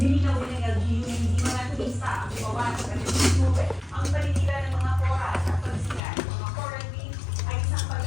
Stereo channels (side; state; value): right; drops out; at 6.0 s